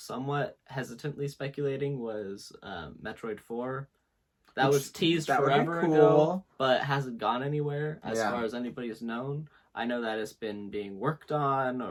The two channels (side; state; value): both; identical; correlation 1.00